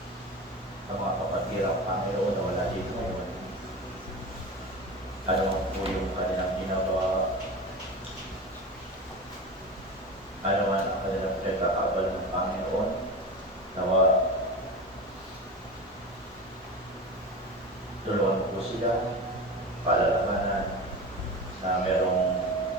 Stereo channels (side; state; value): both; normal; correlation 0.28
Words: Ang mga kapatid Panginoon na wala dito ngayon, ano po yung kanilang ginagawa, ano man ang kanilang pinagkakabal ng Panginoon, nawa tulungan po sila, palalabanan na merong